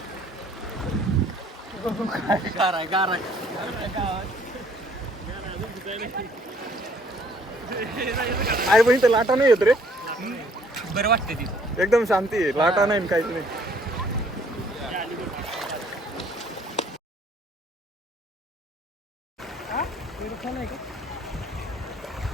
आई बहिणी तर लाटा नाही येत रे. बरं वाटते ती. एकदम शांती आहे. लाटा नाही काहीच नाही.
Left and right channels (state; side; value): normal; both; correlation 0.61